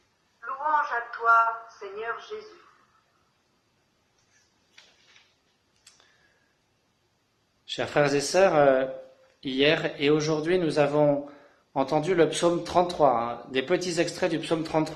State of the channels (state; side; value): identical; both; correlation 1.00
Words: Louange à toi, Seigneur Jésus. Chers frères et sœurs, hier et aujourd'hui, nous avons entendu le psaume 33, des petits extraits du psaume